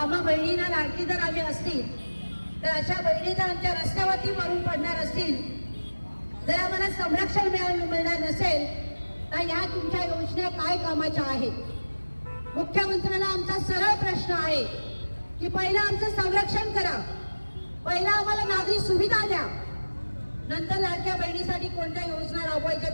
बहिणींना लाडकी जर आम्ही असतील तर अशा बहिणी जर आमच्या रस्त्यावरती मरून पडणार असतील, जर आम्हाला संरक्षण मिळणार नसेल तर या तुमच्या योजना काय कामाच्या आहेत? मुख्यमंत्र्यांना आमचा सरळ प्रश्न आहे की पहिला आमचं संरक्षण करा, पहिला आम्हाला नागरी सुविधा द्या, नंतर लाडक्या बहिणीसाठी कोणत्या योजना राबवायच्या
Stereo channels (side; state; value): both; inverted; correlation -1.00